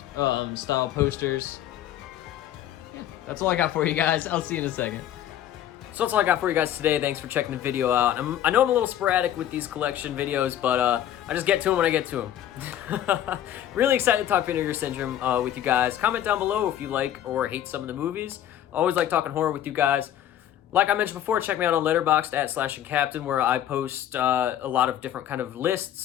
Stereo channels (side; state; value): right; quieter; 11.4 dB